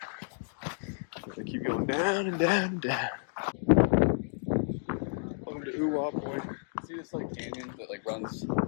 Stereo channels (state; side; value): silent; right; digital silence